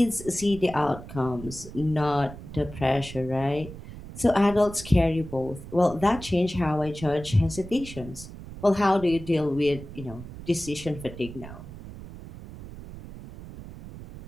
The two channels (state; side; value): noise; right; rumble, 13 dB below the sound